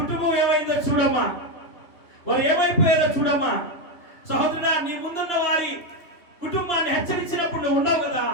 ఏమైందో చూడమ్మా, వారు ఏమైపోయారో చూడమ్మా. సహోదరుడా, నీ ముందున్న వారి కుటుంబాన్ని హెచ్చరించినప్పుడు నువ్వు ఉన్నావు కదా,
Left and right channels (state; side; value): late; right; 3.0 ms